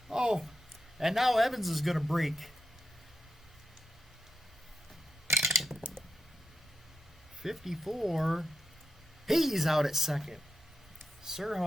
Oh, and now Evans is going to break. .54. He's out at second.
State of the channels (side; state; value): both; normal; correlation 0.85